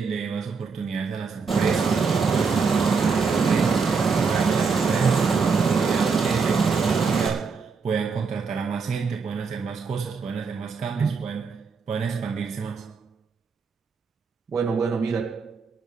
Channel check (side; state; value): left; quieter; 5.1 dB